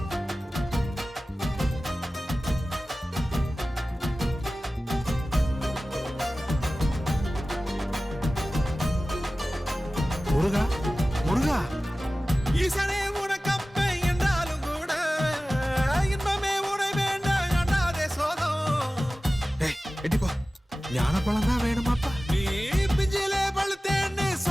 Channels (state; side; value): normal; both; correlation 0.96